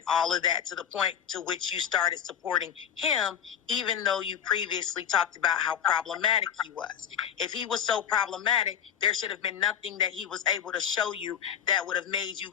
all of that, to the point to which you started supporting him, even though you previously talked about how problematic he was. If he was so problematic, there should have been nothing that he was able to show you that would have made you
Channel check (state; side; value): quieter; right; 8.7 dB